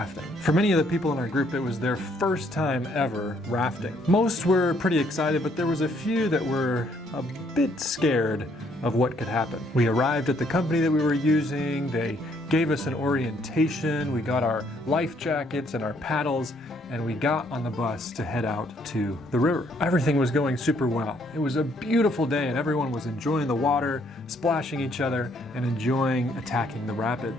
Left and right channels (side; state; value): both; normal; correlation 0.68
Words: For many of the people in our group, it was their first time ever rafting. Most were pretty excited, but there was a few that were a bit scared of what could happen. We arrived at the company that we were using, they gave us an orientation, we got our life jackets and our paddles, and we got on the bus to head out to the river. Everything was going super well. It was a beautiful day and everyone was enjoying the water, splashing each other, and enjoying attacking the